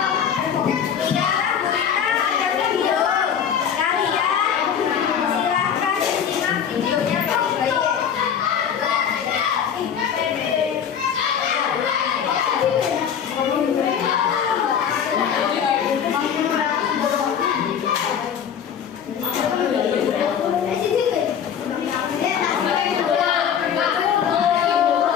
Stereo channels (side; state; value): right; quieter; 8.1 dB